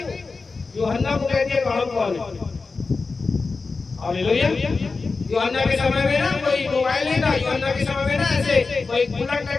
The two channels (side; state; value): right; quieter; 4.2 dB